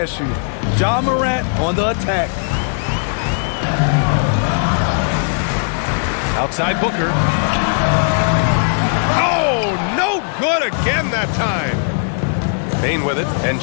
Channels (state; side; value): silent; right; 68 dB below the other